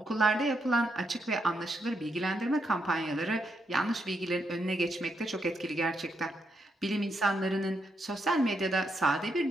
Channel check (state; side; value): normal; both; correlation 0.79